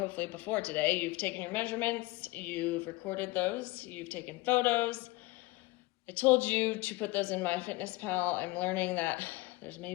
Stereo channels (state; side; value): quieter; right; 20.8 dB